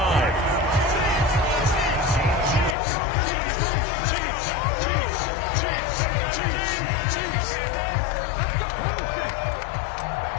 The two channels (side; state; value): right; drops out; at 2.8 s